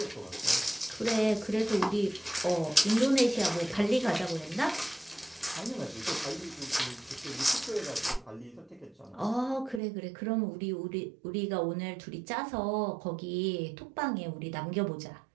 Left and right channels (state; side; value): drops out; left; at 9.8 s